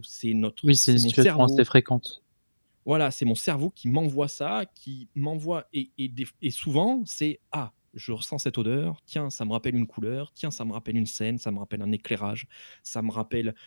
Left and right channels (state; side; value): inverted; both; correlation -1.00